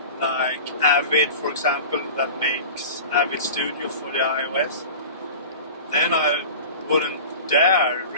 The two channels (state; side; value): inverted; both; correlation -0.36